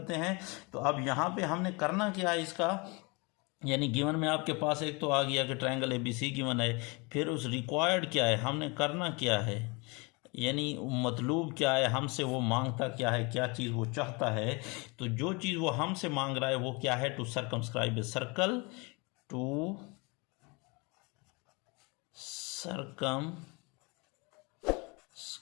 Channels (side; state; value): right; quieter; 28.6 dB